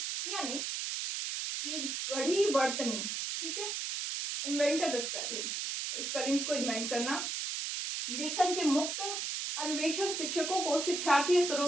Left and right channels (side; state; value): right; noise; hiss, 3 dB below the sound